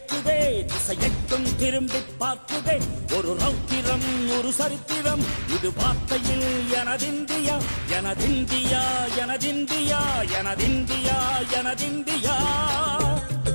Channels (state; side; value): inverted; both; correlation -1.00